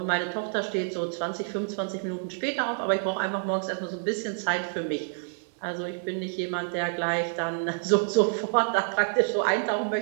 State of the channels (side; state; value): left; silent; 59 dB below the other